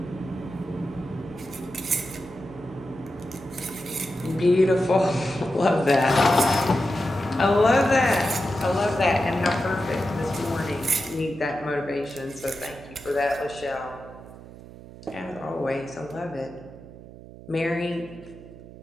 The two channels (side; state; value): right; noise; hum, 17 dB below the sound